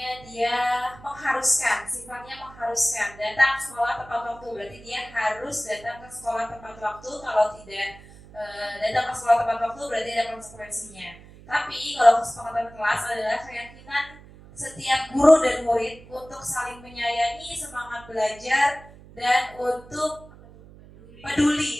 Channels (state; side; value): noise; right; hum, 20 dB below the sound